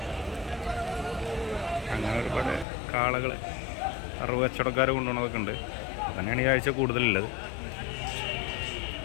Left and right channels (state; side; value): drops out; right; at 2.7 s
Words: അങ്ങനെ ഒരുപാട് കാളകൾ 60 കച്ചവടക്കാർ കൊണ്ടുപോകുന്നതൊക്കെ ഉണ്ട്. അതന്നെയാണ് ഈ ആഴ്ച കൂടുതലുള്ളത്.